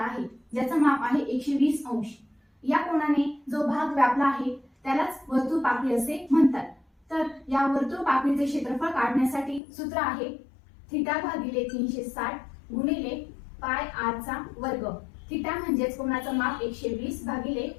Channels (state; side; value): drops out; right; at 9.6 s